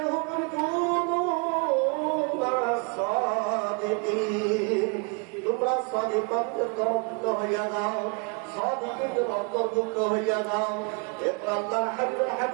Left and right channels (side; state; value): left; quieter; 33.5 dB